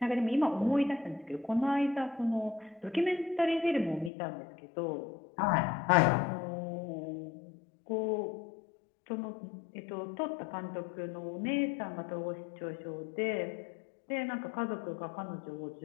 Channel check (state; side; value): drops out; right; at 4.1 s